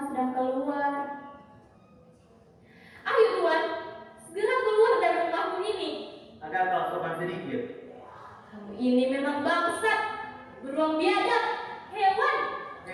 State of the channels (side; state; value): both; identical; correlation 1.00